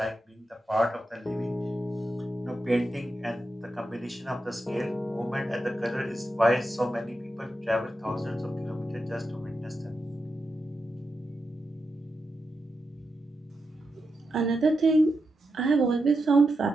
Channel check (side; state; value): both; normal; correlation 0.87